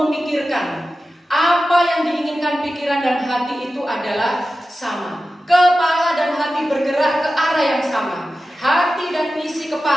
Apa yang diinginkan pikiran dan hati itu adalah sama. Kepala dan hati bergerak ke arah yang sama. Hati dan isi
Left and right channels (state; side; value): normal; both; correlation 0.93